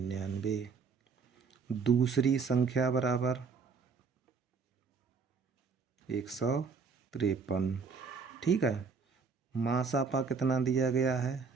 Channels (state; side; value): quieter; left; 5.2 dB